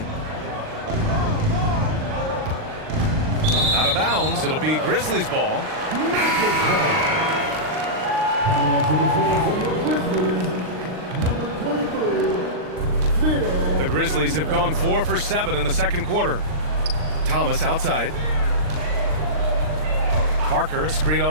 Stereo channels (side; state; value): left; late; 39 ms